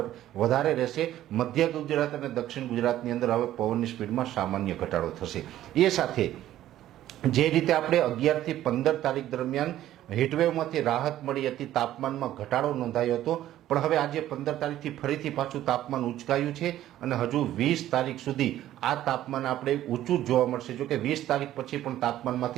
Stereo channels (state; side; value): quieter; left; 13.1 dB